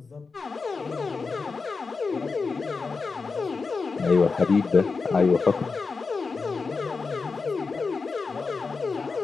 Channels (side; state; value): right; quieter; 4.5 dB